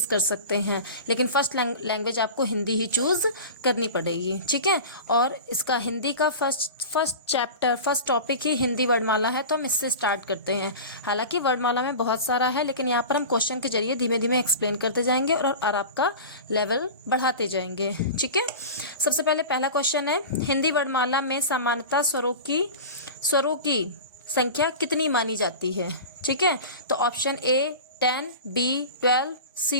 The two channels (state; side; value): inverted; both; correlation -0.32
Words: कर सकते हैं, लेकिन फर्स्ट लैंग्वेज आपको हिंदी ही चूज़ करनी पड़ेगी, ठीक है। और इसका हिंदी का फर्स्ट टॉपिक ही हिंदी वर्णमाला है, तो हम इससे स्टार्ट करते हैं। हालांकि वर्णमाला में बहुत सारा है, लेकिन यहाँ पर हम क्वेश्चन के जरिए धीमे धीमे एक्सप्लेन करते जाएंगे और आपका लेवल बढ़ाते जाएंगे, ठीक है। सबसे पहले पहला क्वेश्चन है, हिंदी वर्णमाला में सामान्यतः स्वरों की संख्या कितनी मानी जाती है, ठीक है। तो option A 10, B 12,